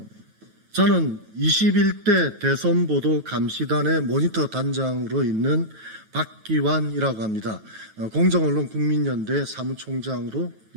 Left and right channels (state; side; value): late; left; 9.2 ms